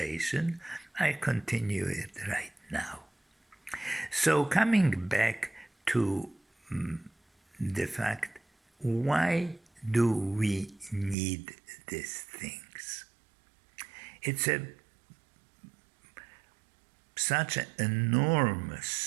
I continue it right now. So, coming back to the fact, why do we need these things? It's such an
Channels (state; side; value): drops out; left; at 11.2 s